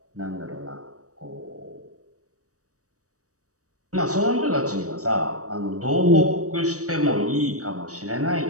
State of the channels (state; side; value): late; left; 0.66 ms